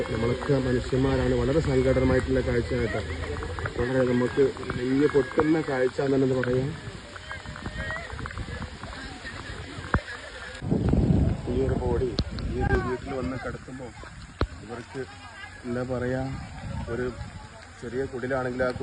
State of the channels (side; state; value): both; identical; correlation 1.00